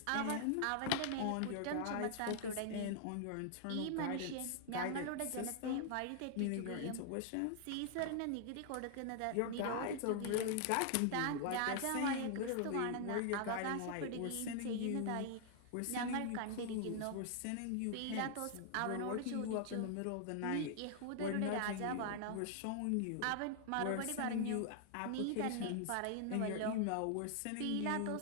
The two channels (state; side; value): different; both; correlation 0.00